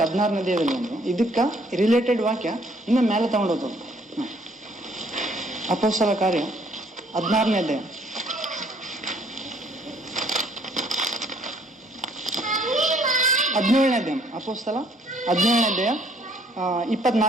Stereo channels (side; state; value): both; normal; correlation 0.63